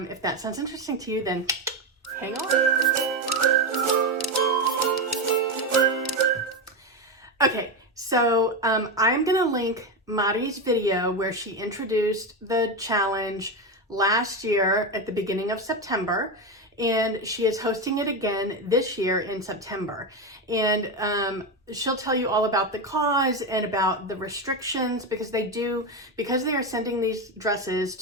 that sounds interesting to you, then hang on. Okay, so I'm gonna link Madi's video where she introduced the challenge last year at the beginning of September, and she is hosting it again this year in September. And she'll tell you all about the cause and about the restrictions because they are sending these dresses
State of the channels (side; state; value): both; normal; correlation 0.14